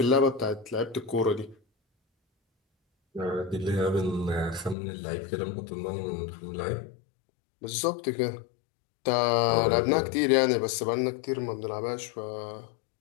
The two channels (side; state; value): right; drops out; at 4.8 s